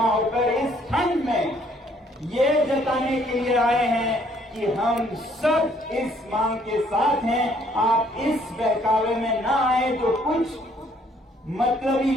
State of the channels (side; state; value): both; normal; correlation 0.64